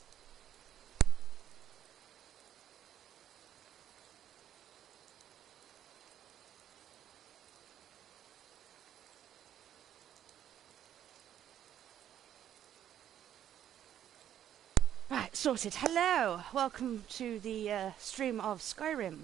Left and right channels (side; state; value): left; quieter; 10.6 dB